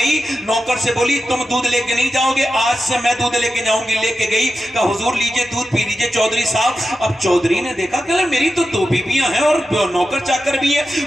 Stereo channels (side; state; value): both; normal; correlation 0.91